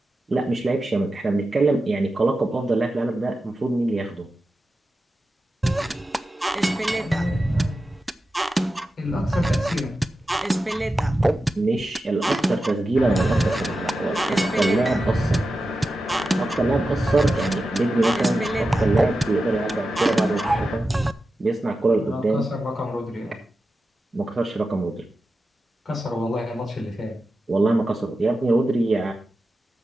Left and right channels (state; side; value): normal; both; correlation 0.92